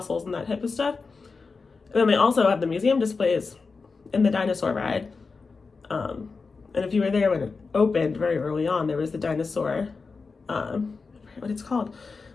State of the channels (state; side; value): quieter; right; 4.5 dB